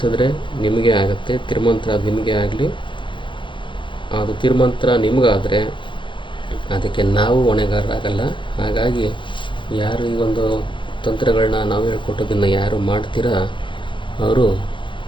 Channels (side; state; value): right; late; 0.24 ms